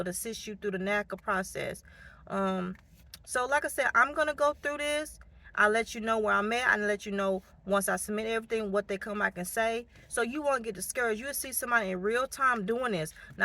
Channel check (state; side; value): identical; both; correlation 1.00